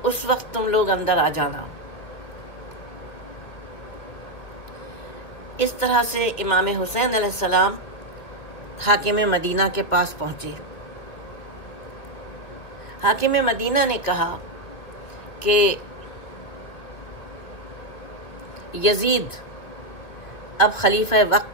उस वक्त तुम लोग अंदर आ जाना। इस तरह से इमाम हुसैन अलैहिस्सलाम हाकिम मदीना के पास पहुँचे। हाकिम मदीना ने कहा कि यजीद अब खलीफा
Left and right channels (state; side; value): late; right; 2.4 ms